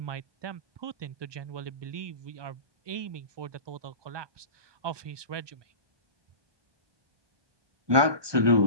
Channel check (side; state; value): left; late; 1.2 ms